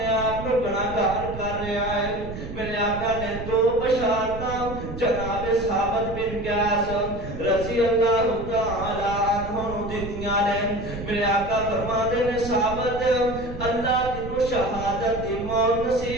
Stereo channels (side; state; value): right; noise; rumble, 9 dB below the sound